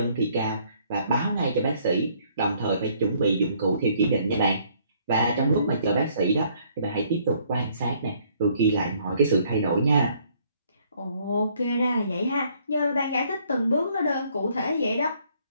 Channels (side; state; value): both; inverted; correlation -0.64